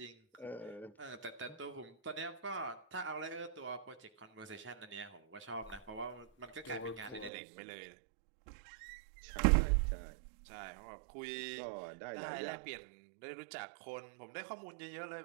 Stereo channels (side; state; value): left; drops out; at 7.3 s